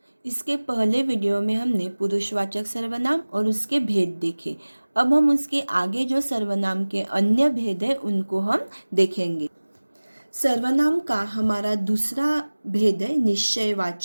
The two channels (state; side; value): inverted; both; correlation -1.00